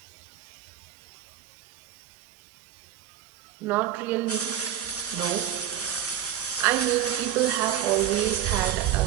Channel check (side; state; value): left; quieter; 10.7 dB